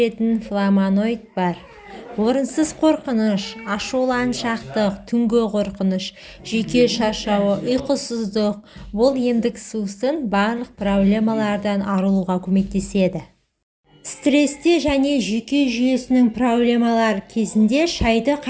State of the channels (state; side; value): identical; both; correlation 1.00